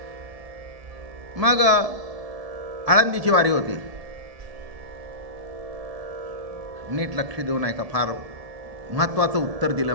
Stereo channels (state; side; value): late; left; 1.7 ms